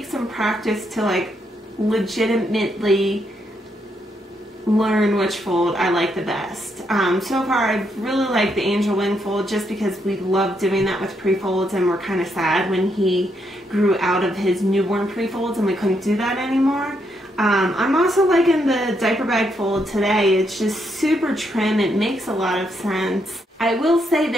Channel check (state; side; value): normal; both; correlation 0.77